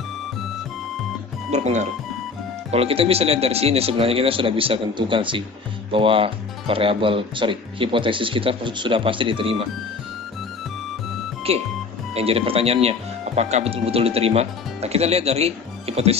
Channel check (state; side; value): quieter; right; 4.7 dB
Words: berpengaruh. Kalau kita bisa lihat dari sini, sebenarnya kita sudah bisa tentukan sih bahwa hipotesis kita sudah pasti diterima. Oke, yang jadi pertanyaannya, apakah betul-betul diterima? Nah, kita lihat dari